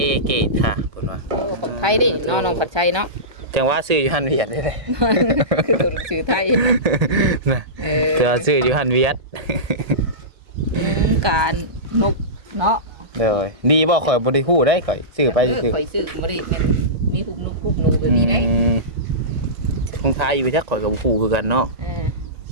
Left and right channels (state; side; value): late; left; 1.2 ms